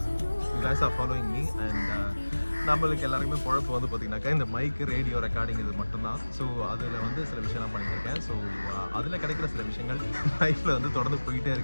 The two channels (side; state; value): both; inverted; correlation -1.00